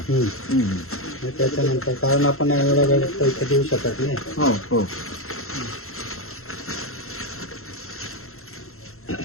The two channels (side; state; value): right; late; 0.62 ms